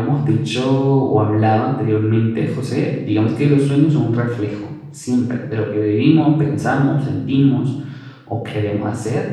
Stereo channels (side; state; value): both; identical; correlation 1.00